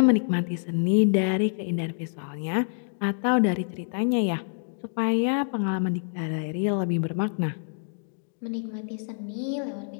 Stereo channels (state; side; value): silent; right; digital silence